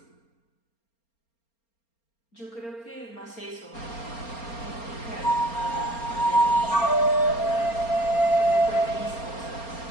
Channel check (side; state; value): right; late; 4.3 ms